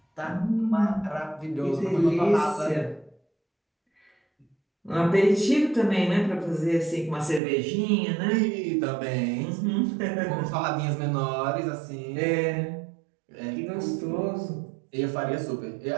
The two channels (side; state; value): left; drops out; at 7.4 s